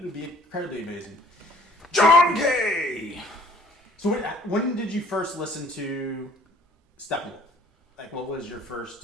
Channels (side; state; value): both; normal; correlation 0.56